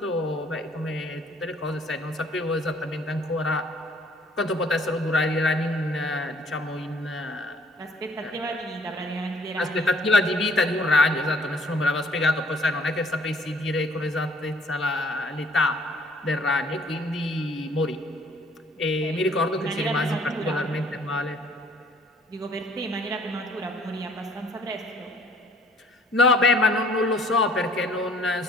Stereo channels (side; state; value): both; normal; correlation 0.58